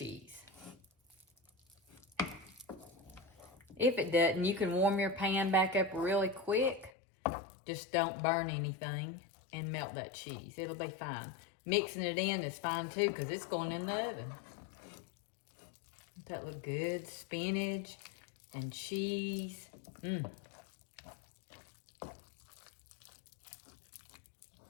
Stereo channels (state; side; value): drops out; right; at 6.9 s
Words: If it doesn't, you can warm your pan back up really quick. Just don't burn anything and melt that cheese. It'll be fine. Mixing it in is fine too, because it's going in the oven. Doesn't that look good? Spinach and cheese.